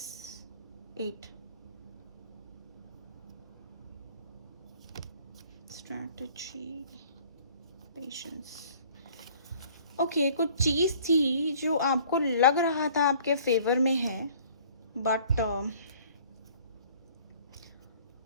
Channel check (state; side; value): inverted; both; correlation -0.54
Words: 8, strategy, patience. ओके, कुछ चीज़ थी जो आपको लग रहा था आपके फेवर में है, but